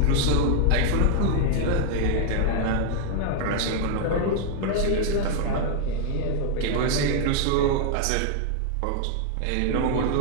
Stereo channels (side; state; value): both; different; correlation -0.01